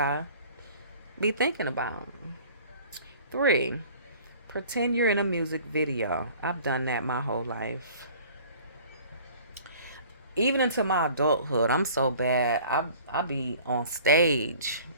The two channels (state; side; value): inverted; both; correlation -0.49